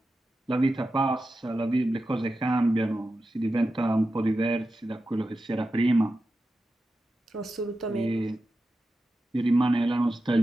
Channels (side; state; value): both; normal; correlation 0.91